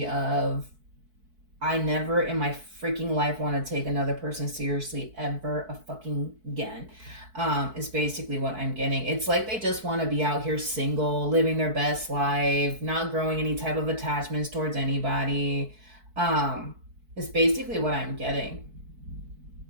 of, I never in my freaking life want to take another person seriously ever a fucking again. Is basically what I'm getting. It's like they just want to be out here single, living their best life, not growing any type of attachments towards anybody. It's basically what I'm getting.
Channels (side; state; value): left; late; 4.6 ms